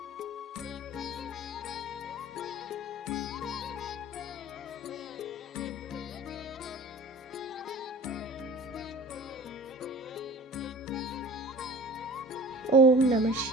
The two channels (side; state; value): both; normal; correlation 0.41